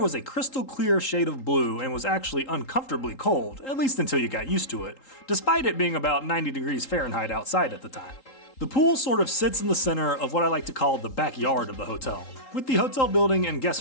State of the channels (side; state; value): right; late; 3.8 ms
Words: was a crystal clear shade of blue and was actually uncomfortably cold, at least until you got used to it, despite it being about 90 degrees Fahrenheit outside at the time. The pool sort of sits in the center of what I like to call the backyard of the hotel, with the hotel building and